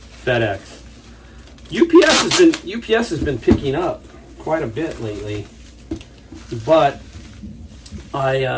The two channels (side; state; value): both; identical; correlation 1.00